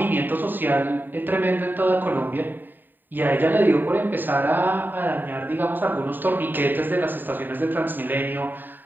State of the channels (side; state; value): left; late; 0.091 ms